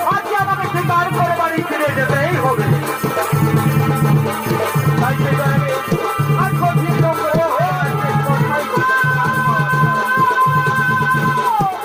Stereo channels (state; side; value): identical; both; correlation 1.00